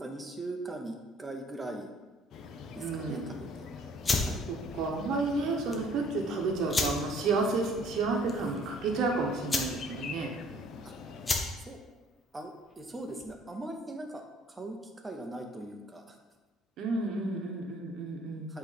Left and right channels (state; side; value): normal; both; correlation 0.57